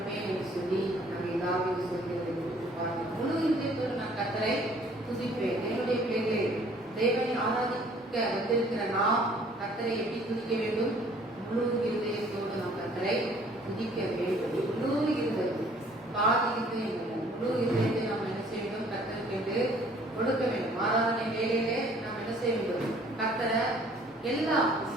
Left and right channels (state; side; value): normal; both; correlation 0.56